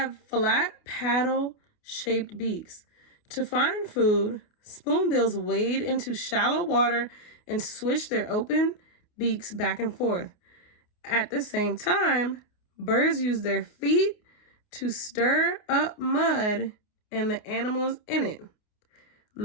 flat paddle-shaped beaks. To find food, spoonbills wade into shallow water and swish their open beaks back and forth. At the same time, birds use their feet to stir up mud and the animals in it.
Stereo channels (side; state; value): right; late; 28 ms